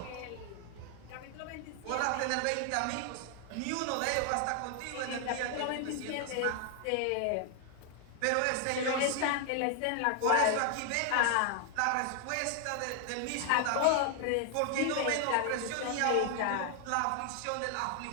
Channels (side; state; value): both; different; correlation 0.00